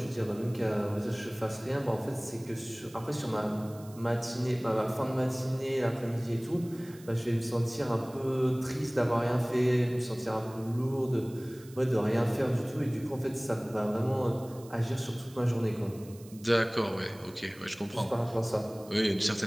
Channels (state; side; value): noise; right; hiss, 22 dB below the sound